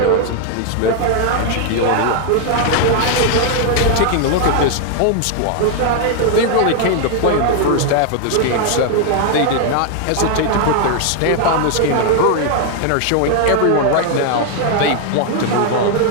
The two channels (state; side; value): different; both; correlation 0.00